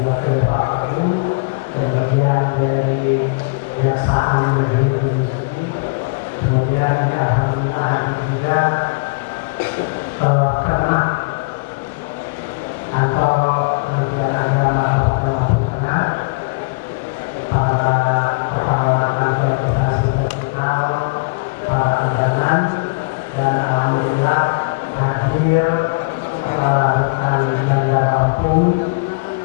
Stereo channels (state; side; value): quieter; right; 31.6 dB